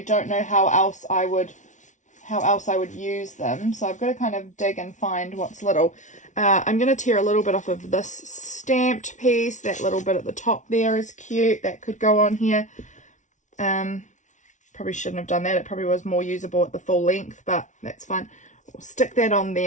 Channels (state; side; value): late; right; 0.36 ms